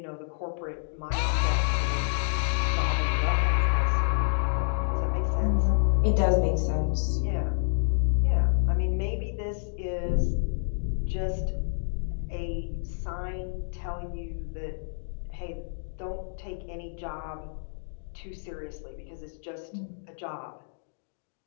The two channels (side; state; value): right; silent; digital silence